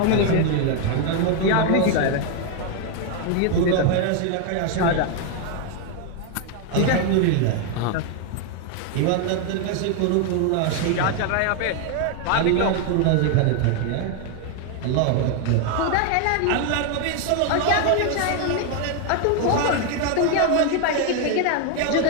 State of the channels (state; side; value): different; both; correlation 0.01